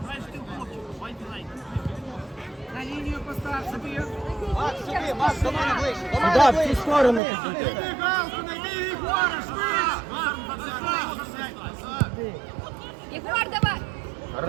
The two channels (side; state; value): left; drops out; at 7.2 s